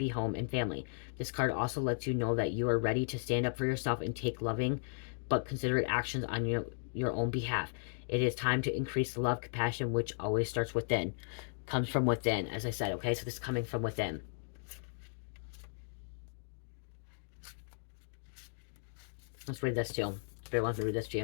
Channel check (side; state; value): right; silent; digital silence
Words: home and family. This card also lets you know that you are ready to stand up for yourself and take loving but considerate actions on your own behalf. It is time to increase the love, compassion, which always starts within. Comes from within, as I said, okay? So this is coming from within. Let's read this too. Spirit wants me to read this to